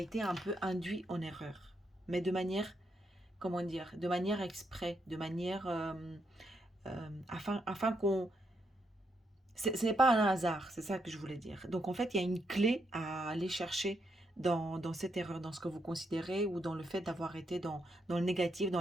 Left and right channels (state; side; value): normal; both; correlation 0.79